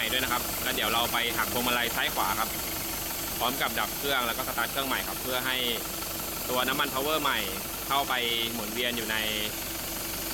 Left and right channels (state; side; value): identical; both; correlation 1.00